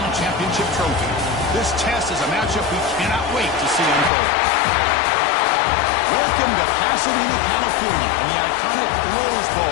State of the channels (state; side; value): drops out; right; at 4.1 s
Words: championship trophy. This test is a matchup we cannot wait to see unfold. Welcome to Pasadena, California, and the iconic Rose